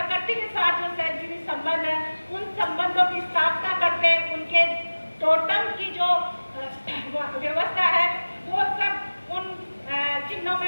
के साथ जो सहजीवी संबंध है, उन संबंधों की स्थापना करते उनके टोटम की जो व्यवस्था है वो सब उन चिन्हों में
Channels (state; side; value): inverted; both; correlation -1.00